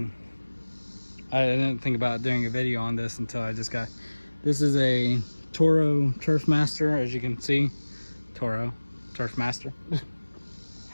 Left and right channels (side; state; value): both; inverted; correlation -1.00